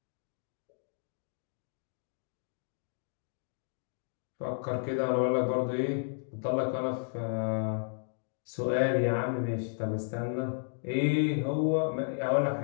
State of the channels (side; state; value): right; silent; digital silence